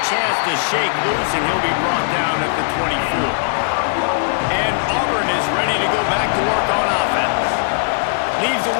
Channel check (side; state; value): right; silent; digital silence